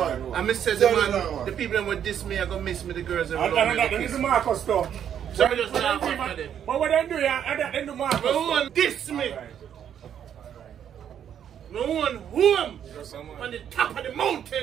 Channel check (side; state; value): left; quieter; 9.2 dB